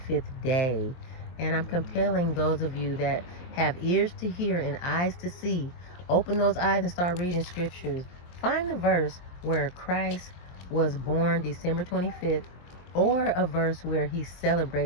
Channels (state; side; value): late; right; 23 ms